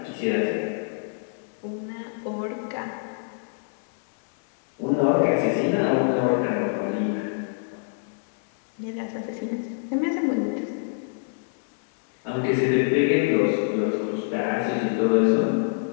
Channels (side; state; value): right; silent; digital silence